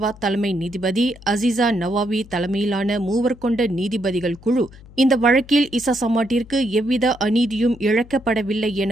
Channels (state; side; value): noise; left; hum, 21 dB below the sound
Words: தலைமை நீதிபதி அசீசா நவாவி தலைமையிலான 3 கொண்ட நீதிபதிகள் குழு இந்த வழக்கில் ஈசா சமாட்டிற்கு எவ்வித அநீதியும் இழைக்கப்படவில்லை